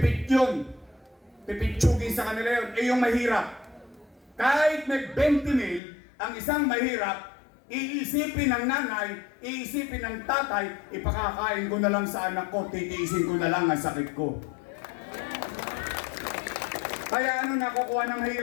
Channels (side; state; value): right; drops out; at 5.8 s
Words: yun. Pipitsugin sa kanila yun. Eh, yung mahirap. Kahit may 20 mil, ang isang mahirap, iisipin ng nanay, iisipin ng tatay, ipakakain ko na lang sa anak ko, titiisin ko na lang ang sakit ko. Kaya ano nakukuha ng